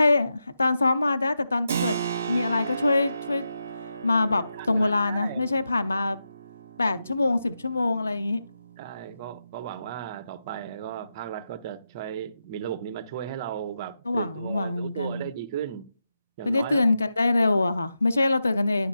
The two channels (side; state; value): both; inverted; correlation -0.87